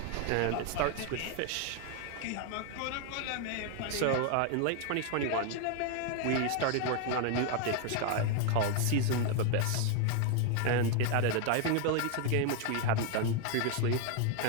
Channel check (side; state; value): both; different; correlation 0.01